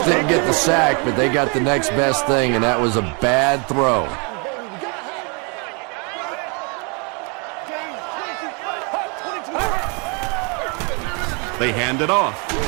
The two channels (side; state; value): left; quieter; 34.1 dB